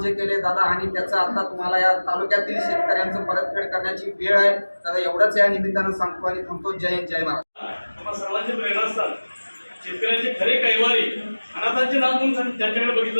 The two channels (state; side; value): inverted; both; correlation -1.00